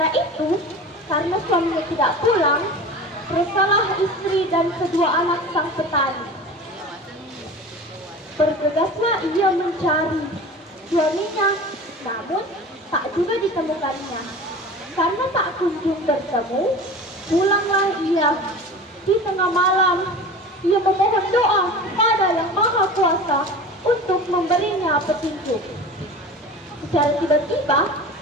itu, karena suaminya tidak pulang, resahlah istri dan kedua anak sang petani. Bergegaslah ia mencari suaminya, namun tak juga ditemukannya. Karena tak kunjung bertemu, pulanglah ia. Di tengah malam, ia memohon doa kepada Yang Maha Kuasa untuk memberinya petunjuk. Secara tiba-tiba,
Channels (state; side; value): normal; both; correlation 0.36